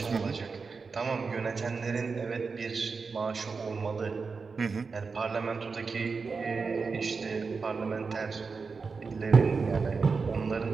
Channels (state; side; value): quieter; left; 4.8 dB